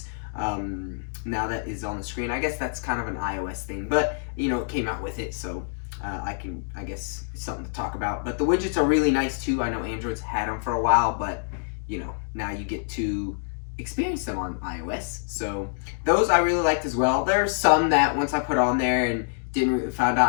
now that is on the screen. I guess that's kind of an iOS thing, but it came out with it, so I guess it's something to talk about. But the widgets are really nice too. I know Android's had them for a while, but now you get to experience them on iOS. So those I really liked as well. There are some that once I put on there and found out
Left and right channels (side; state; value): right; silent; digital silence